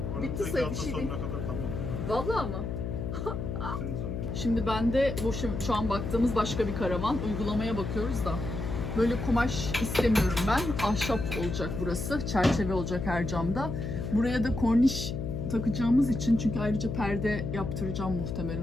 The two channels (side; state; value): left; noise; hum, 4 dB below the sound